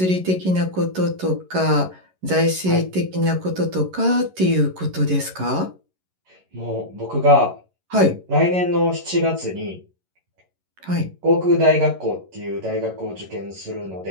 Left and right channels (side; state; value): left; late; 11 ms